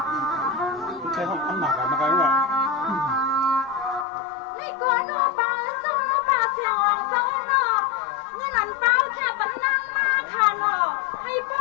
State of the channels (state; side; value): drops out; right; at 4.0 s